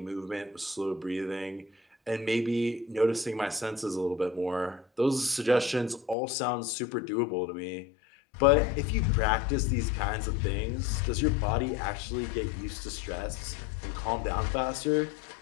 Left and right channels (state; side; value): drops out; right; at 6.2 s